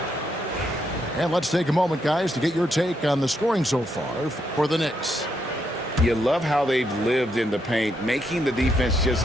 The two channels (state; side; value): normal; both; correlation 0.78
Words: And let's take a moment, guys, to get your take on the scoring so far for the Knicks. You love how they've lived in the paint, making the defense just